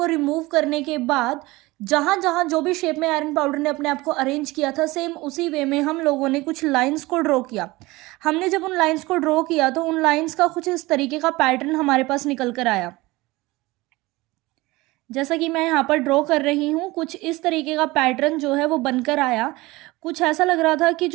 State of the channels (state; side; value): quieter; left; 21.0 dB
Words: रिमूव करने के बाद जहाँ जहाँ जो भी शेप में आयरन पाउडर ने अपने आप को अरेंज किया था, सेम उसी वे में हम लोगों ने कुछ लाइंस को ड्रॉ किया। हमने जब उन लाइंस को ड्रॉ किया तो उन लाइंस का कुछ इस तरीके का पैटर्न हमारे पास निकल कर आया। जैसा कि मैं यहाँ पर ड्रॉ कर रही हूँ, कुछ इस तरीके का पैटर्न जो है वो बनकर आया। कुछ ऐसा लग रहा था कि